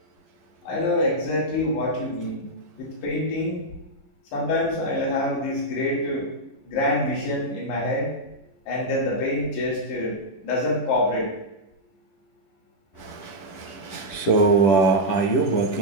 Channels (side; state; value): right; late; 10 ms